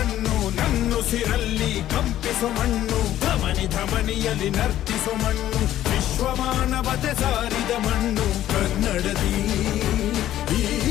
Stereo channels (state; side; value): quieter; right; 12.8 dB